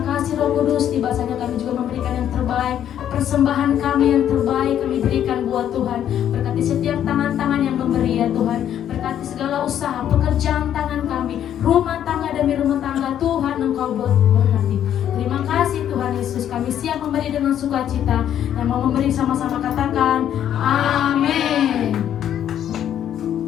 kasih Roh Kudus, tiba saatnya kami juga memberikan yang terbaik. Persembahan kami yang terbaik kami berikan buat Tuhan. Berkati setiap tangan-tangan yang memberi ya Tuhan. Berkati segala usaha, pekerjaan tangan kami, rumah tangga demi rumah tangga Tuhan Engkau berkati. Terima kasih Tuhan Yesus, kami siap memberi dengan sukacita. Yang mau memberi sama-sama katakan amin.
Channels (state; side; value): quieter; right; 10.3 dB